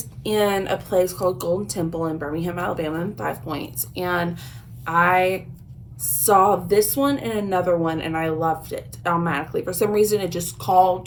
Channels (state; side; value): identical; both; correlation 1.00